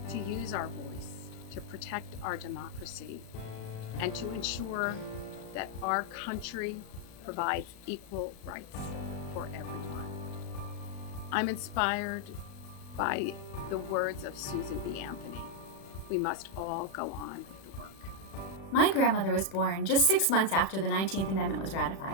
to use our voice, to protect our democracy, and to ensure that our country provides equal rights for everyone. I'm inspired by the words of Susan B. Anthony. We must all go on with the work. My grandmother was born just 6 months after the 19th Amendment was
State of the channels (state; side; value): late; right; 36 ms